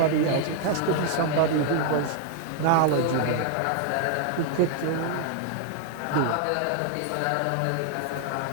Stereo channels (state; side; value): different; both; correlation 0.00